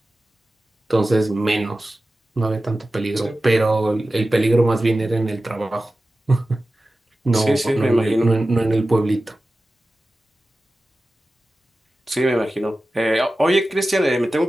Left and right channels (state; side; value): normal; both; correlation 0.95